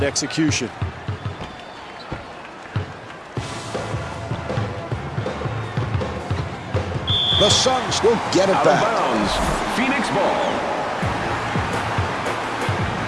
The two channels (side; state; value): both; identical; correlation 1.00